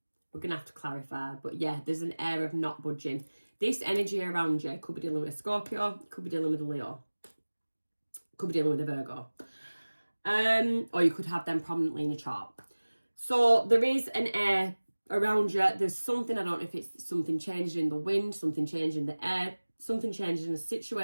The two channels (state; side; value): inverted; both; correlation -1.00